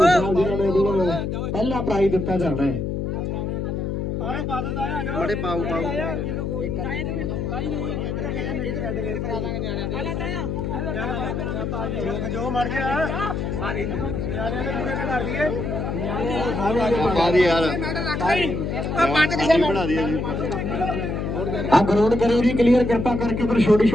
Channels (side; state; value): left; noise; hum, 2 dB below the sound